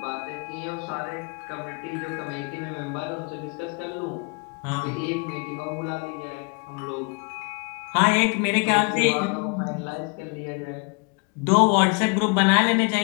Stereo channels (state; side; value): quieter; right; 32.9 dB